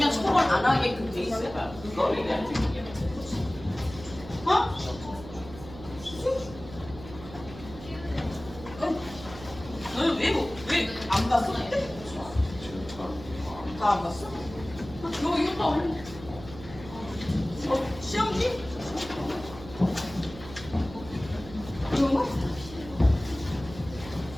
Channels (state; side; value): noise; right; hum, 15 dB below the sound